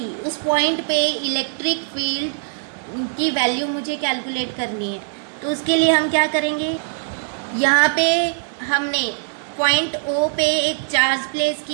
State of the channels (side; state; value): left; silent; digital silence